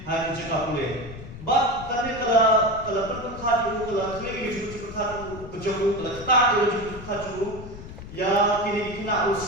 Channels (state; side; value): noise; left; rumble, 13 dB below the sound